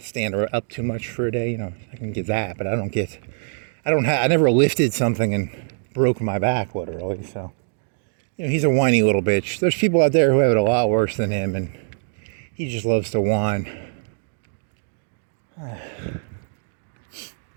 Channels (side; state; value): left; silent; digital silence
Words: stand up too much for a day, I can get that, but I never lifted something and broke my back, literally, so, he's a whiny little bitch. There's people out there who have it a lot worse than him, and he just loves to whine.